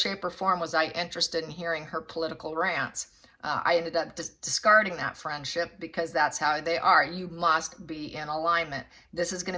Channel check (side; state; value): both; identical; correlation 1.00